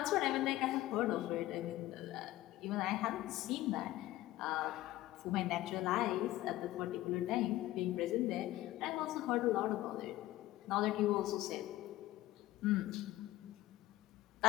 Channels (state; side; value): quieter; right; 16.1 dB